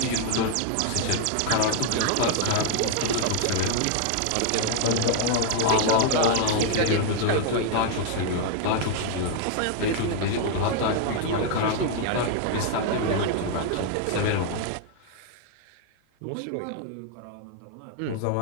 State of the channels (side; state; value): both; different; correlation 0.00